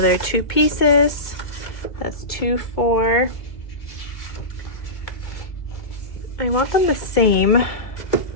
2 pieces. That's 2, 4. I want them the same.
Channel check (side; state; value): right; late; 1.9 ms